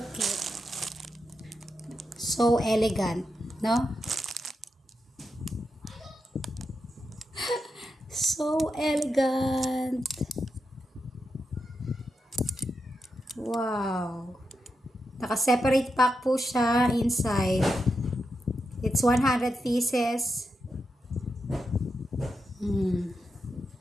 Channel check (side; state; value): both; normal; correlation 0.86